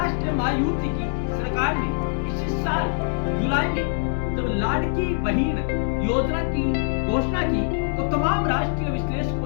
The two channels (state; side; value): silent; right; digital silence